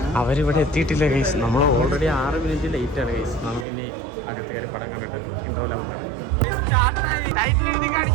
അവരിവിടെ എത്തിയിട്ടില്ല ഗൈസ്. നമ്മൾ ഓൾറെഡി 6 മിനിറ്റ് ലേറ്റ് ആണ് ഗൈസ്. നമുക്കിനി അകത്ത് കയറി പടം കണ്ടിട്ട് ഇന്റർവ്യൂ ആകും കാണാം.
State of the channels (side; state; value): left; drops out; at 3.7 s